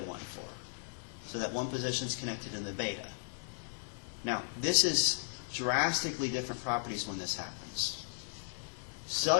So that 1 position is connected in the beta. Now, this is drastically different properties when this happens.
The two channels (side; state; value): right; silent; 54 dB below the other